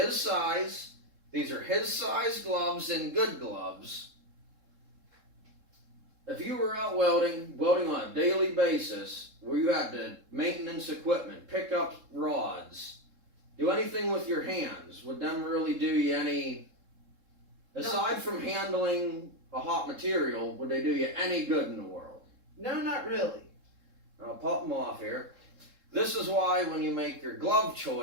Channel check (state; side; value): late; left; 3.7 ms